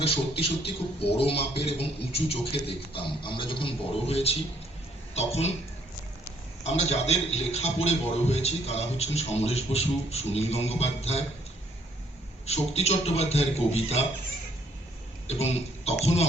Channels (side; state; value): both; normal; correlation 0.66